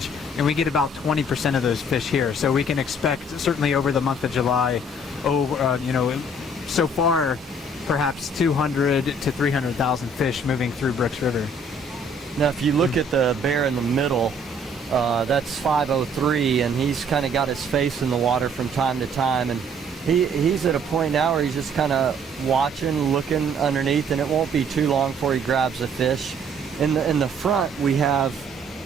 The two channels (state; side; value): normal; both; correlation 0.60